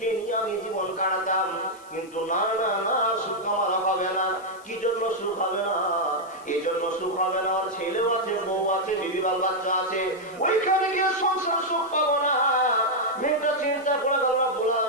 নিয়ে আমি জীবন কাটাতাম। কিন্তু না না না, সুখ আমার হবে না। কি জন্য সুখ হবে না? এই জন্য সুখ হবে না, ওর ছেলেও আছে, বউ আছে, বিবি বাল বাচ্চা আছে, ওইখানে গিয়ে সংসার সুখ পাবো না। মেয়েটা চিন্তা করে গেল,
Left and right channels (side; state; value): left; noise; hiss, 25 dB below the sound